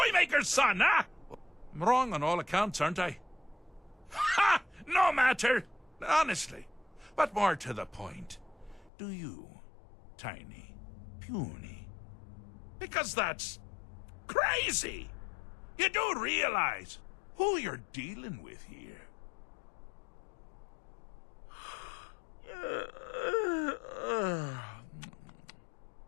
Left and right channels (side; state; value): right; drops out; at 8.9 s